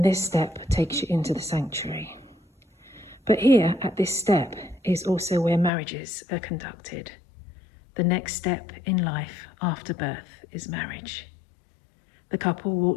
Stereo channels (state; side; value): drops out; right; at 5.7 s